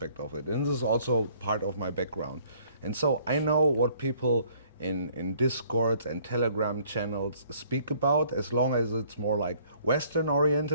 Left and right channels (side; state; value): both; inverted; correlation -0.60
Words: of it. And this is also part of my background. And so I know what people in Discords and Telegram channels speak about, as long as it's more like Western